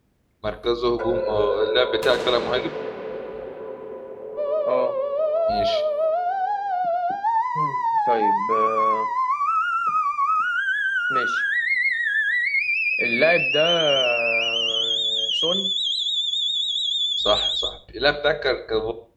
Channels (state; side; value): identical; both; correlation 1.00